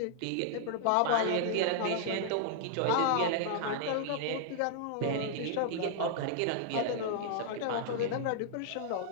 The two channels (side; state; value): both; different; correlation -0.01